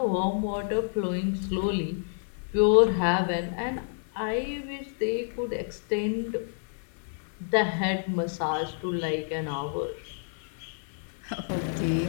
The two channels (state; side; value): silent; right; 59 dB below the other